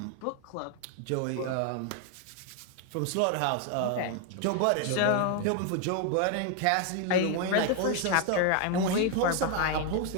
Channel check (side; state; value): both; different; correlation 0.01